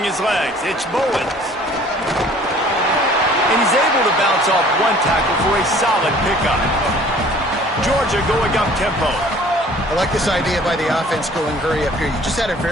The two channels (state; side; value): normal; both; correlation 0.52